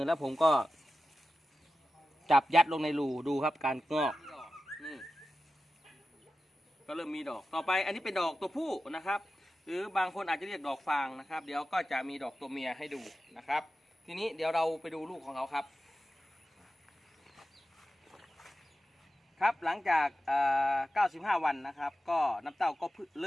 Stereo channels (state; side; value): normal; both; correlation 0.93